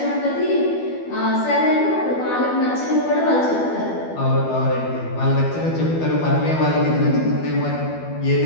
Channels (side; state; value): right; late; 12 ms